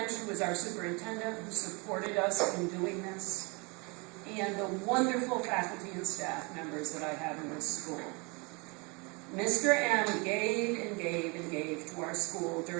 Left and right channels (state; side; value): quieter; left; 29.6 dB